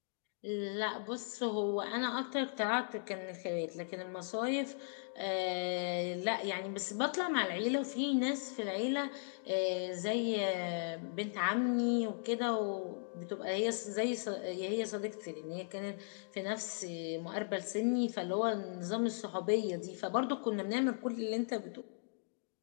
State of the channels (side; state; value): right; silent; digital silence